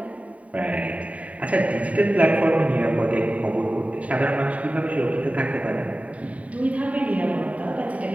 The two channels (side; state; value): left; late; 0.068 ms